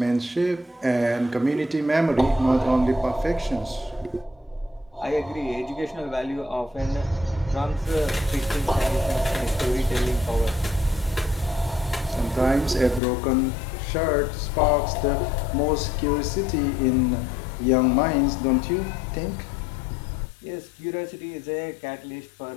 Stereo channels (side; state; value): right; drops out; at 13.0 s